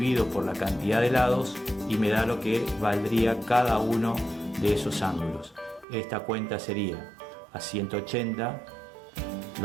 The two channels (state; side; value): drops out; left; at 5.9 s